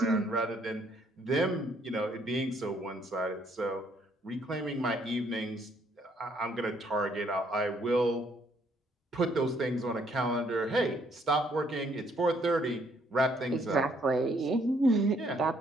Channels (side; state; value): both; normal; correlation 0.67